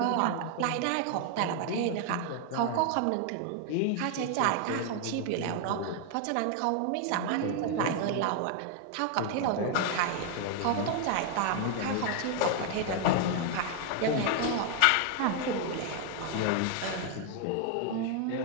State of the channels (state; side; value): different; both; correlation 0.00